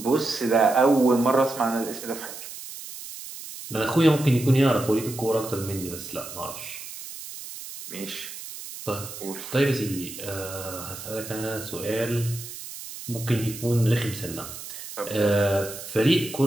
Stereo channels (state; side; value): noise; right; hiss, 12 dB below the sound